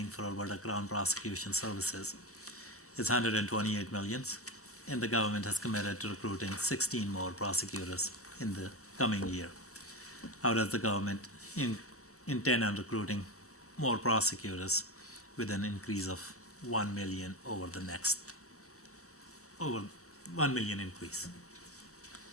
for Alberta Crown Prosecution Services is 128 million, and the government has committed to recruiting 16 more prosecutors in the coming year. How does the government intend on recruiting more prosecutors with an increase of 1 million over 1 million increase?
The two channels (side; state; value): both; normal; correlation 0.18